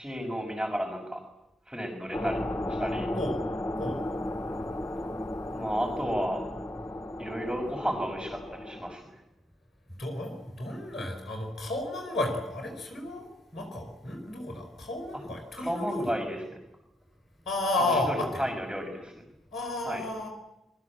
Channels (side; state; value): both; normal; correlation 0.75